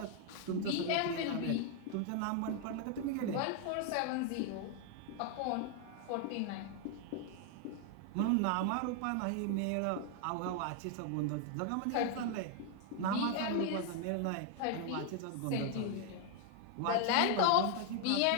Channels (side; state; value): both; different; correlation 0.00